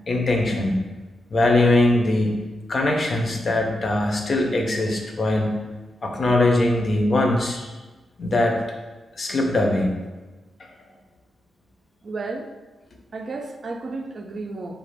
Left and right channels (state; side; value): normal; both; correlation 0.86